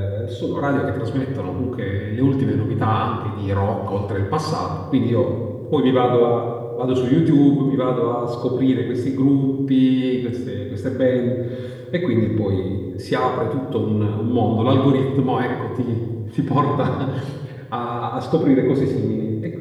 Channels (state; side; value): identical; both; correlation 1.00